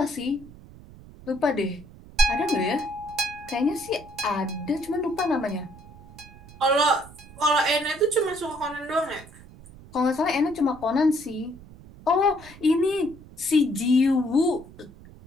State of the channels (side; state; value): right; noise; rumble, 20 dB below the sound